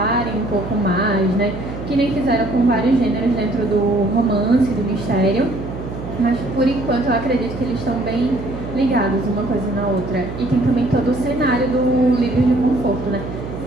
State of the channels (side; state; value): right; noise; hum, 9 dB below the sound